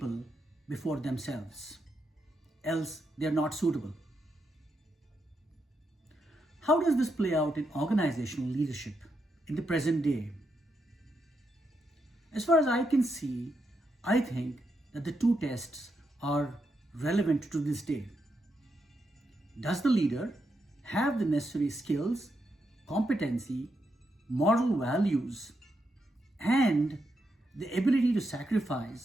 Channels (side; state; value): both; normal; correlation 0.82